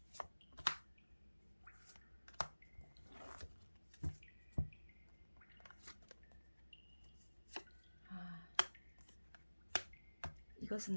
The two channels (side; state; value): both; inverted; correlation -1.00